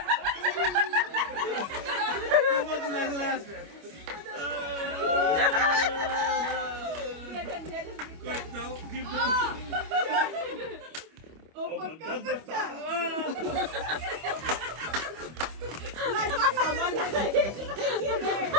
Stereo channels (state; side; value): late; left; 25 ms